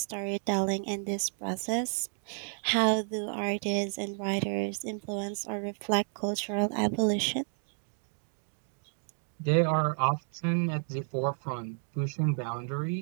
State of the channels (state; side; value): silent; left; 57 dB below the other